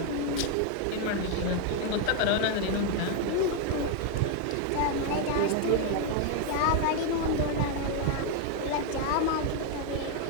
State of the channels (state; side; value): different; both; correlation 0.01